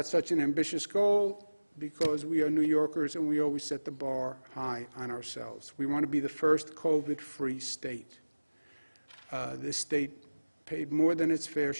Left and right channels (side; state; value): both; inverted; correlation -1.00